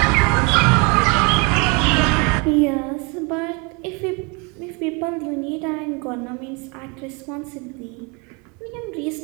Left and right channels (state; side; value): quieter; left; 31.0 dB